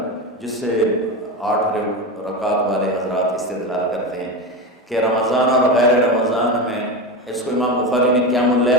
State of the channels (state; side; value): normal; both; correlation 0.21